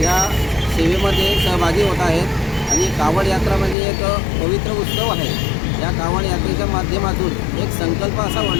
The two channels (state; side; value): drops out; right; at 3.8 s